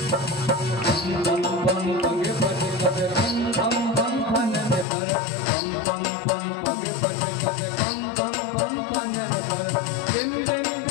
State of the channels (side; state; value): right; drops out; at 4.9 s